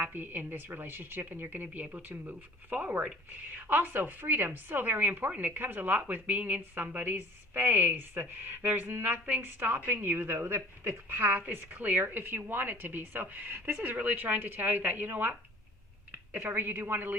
in this relationship, and you're going to be able to move forward. Also, freedom, so very important. It comes a lot with being in somebody's space. There's nothing stopping you, though. The path is clear if you want it to be. So this is really trying to tell you that, you know what, if ever you do want to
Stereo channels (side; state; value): both; normal; correlation 0.48